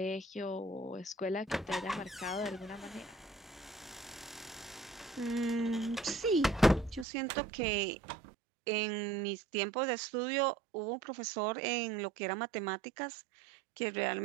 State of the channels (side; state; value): left; drops out; at 7.1 s